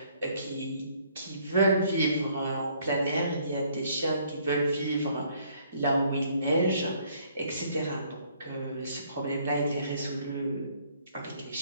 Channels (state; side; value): inverted; both; correlation -0.64